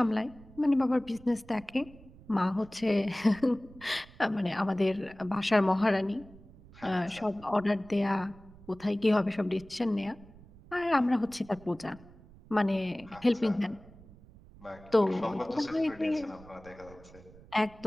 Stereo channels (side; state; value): right; noise; rumble, 22 dB below the sound